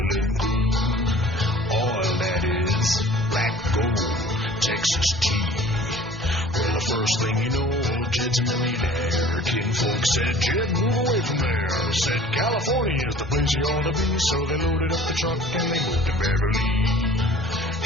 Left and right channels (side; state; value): both; normal; correlation 0.47